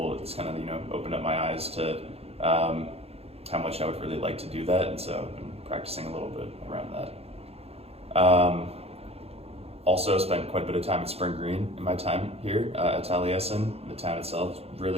It's kind of opened up my eyes to how much I would really like to do that, and so I've been practicing a little bit around that. Also spent quite a bit of time at Spring Green in my time here at Taliesin. The town itself,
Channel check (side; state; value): left; late; 0.29 ms